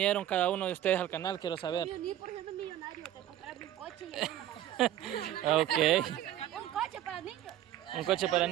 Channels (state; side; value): quieter; left; 12.3 dB